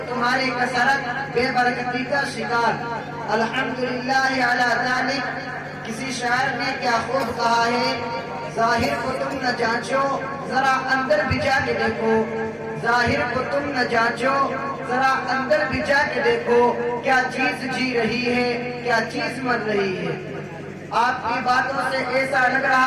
تمہاری کثرت بے برکتی کا شکار۔ الحمدللہ علی ذالک۔ کسی شاعر نے کیا خوب کہا ہے، ظاہر کو تم نہ جانچو ذرا اندر بھی جا کے دیکھو، ظاہر کو تم نہ جانچو ذرا اندر بھی جا کے دیکھو، کیا چیز جی رہی ہے کیا چیز مر رہی ہے۔ آپ کی باتوں سے ایسا لگ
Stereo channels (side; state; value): both; identical; correlation 1.00